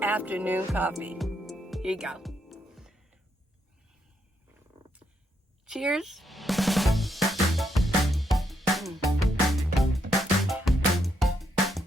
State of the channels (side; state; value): both; normal; correlation 0.78